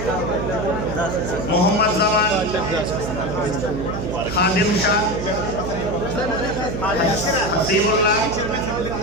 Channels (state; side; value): noise; right; hum, 5 dB below the sound